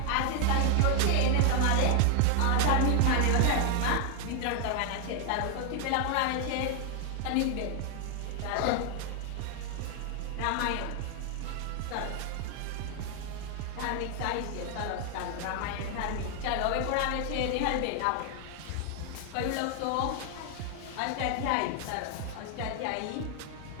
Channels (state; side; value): different; both; correlation 0.00